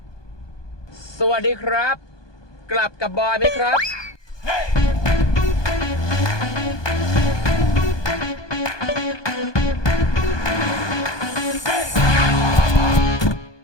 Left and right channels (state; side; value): late; right; 1.2 ms